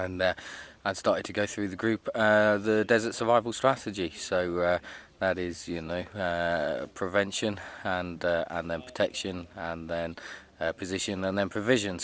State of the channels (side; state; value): both; identical; correlation 1.00